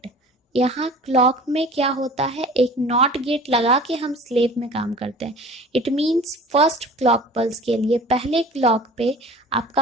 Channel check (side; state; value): both; normal; correlation 0.43